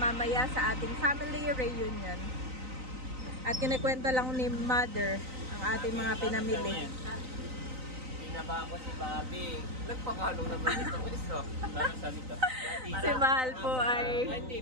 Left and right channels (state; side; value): late; left; 3.9 ms